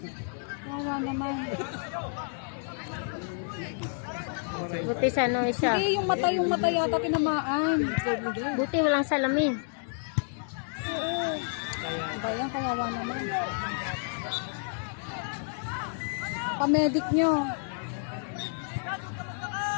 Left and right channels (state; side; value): silent; right; 58 dB below the other